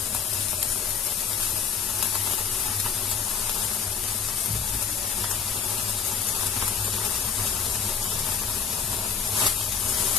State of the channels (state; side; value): quieter; right; 6.7 dB